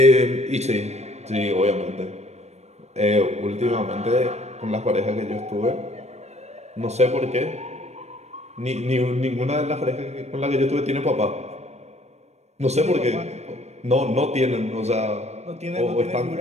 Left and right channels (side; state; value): left; late; 0.32 ms